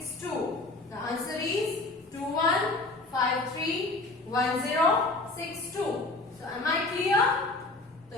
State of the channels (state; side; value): quieter; right; 3.1 dB